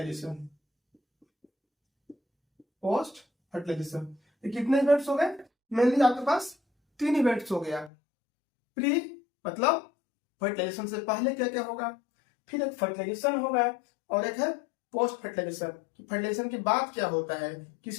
पोस्ट फर्टिलाइजेशन ये कितने इवेंट्स हो गए? मेनली आपके पास 3 इवेंट्स हो गया। प्री मतलब फर्टिलाइजेशन से पहले क्या क्या होगा, फिर एक फर्टिलाइजेशन होगा और एक है पोस्ट फर्टिलाइजेशन। फर्टिलाइजेशन के बाद क्या होता है,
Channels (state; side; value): drops out; right; at 7.9 s